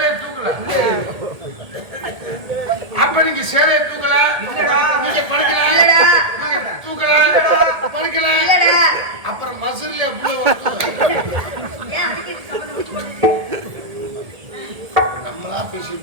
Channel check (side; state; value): left; late; 1.8 ms